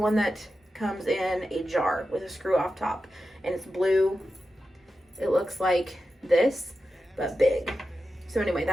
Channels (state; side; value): normal; both; correlation 0.91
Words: that comes in a jar with a screw off top, and it's blue. It looks like this, but big. So anyway,